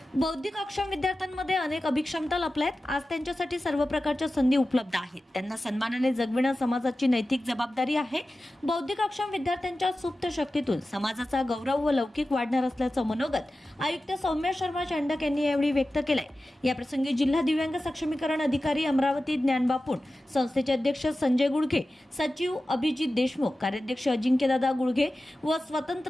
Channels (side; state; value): both; normal; correlation 0.94